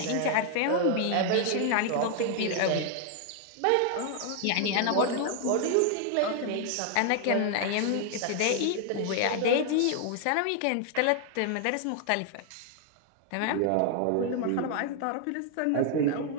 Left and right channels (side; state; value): both; different; correlation 0.00